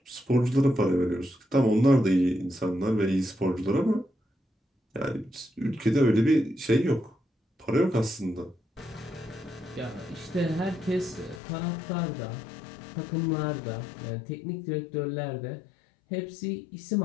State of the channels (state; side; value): drops out; right; at 11.4 s